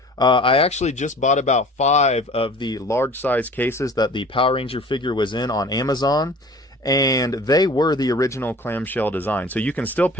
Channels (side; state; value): both; normal; correlation 0.45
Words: I actually just bought about 5 of the large size cases that the Power Ranger figure was in on Amazon, and they were the original clamshell design. So you can still